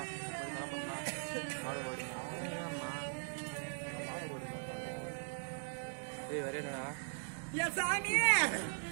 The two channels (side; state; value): left; silent; digital silence